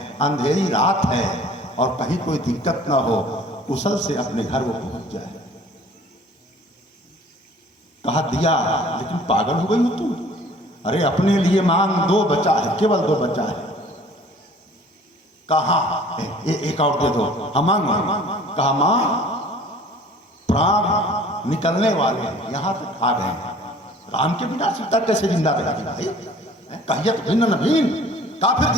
अंधेरी रात है और कहीं कोई दिक्कत ना हो, कुशल से अपने घर वो पहुंच जाए। कहा दिया, लेकिन पागल हो गई हो तुम? अरे अपने लिए मांग, 2 बचा है, केवल 2 बचा है। कहा एक और दे दो। हम मांगो। कहा मां, प्राण निकलने वाले यहां तक आ गए, राम के बिना सीता कैसे जिंदा रहेगी भाई? कहिए तो भिन्न न भिन्न, का फिर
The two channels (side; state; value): both; normal; correlation 0.50